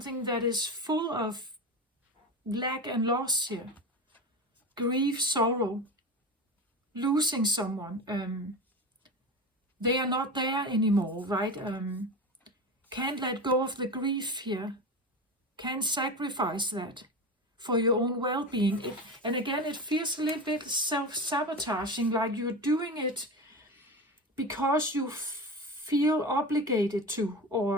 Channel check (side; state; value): both; normal; correlation 0.25